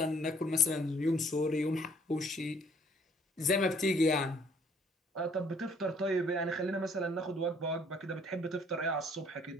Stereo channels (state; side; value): normal; both; correlation 0.61